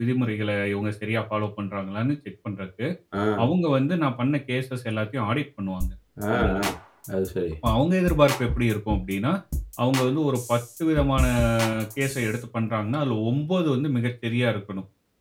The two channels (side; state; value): both; identical; correlation 1.00